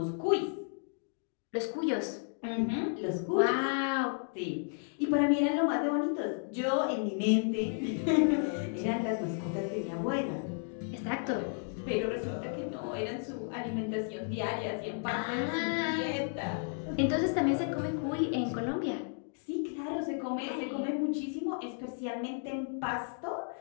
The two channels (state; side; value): silent; right; 56 dB below the other